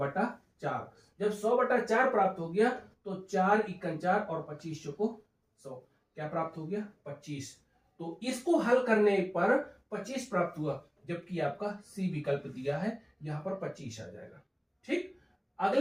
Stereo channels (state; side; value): identical; both; correlation 1.00